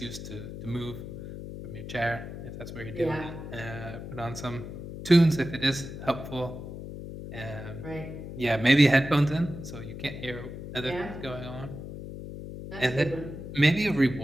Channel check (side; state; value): left; noise; hum, 10 dB below the sound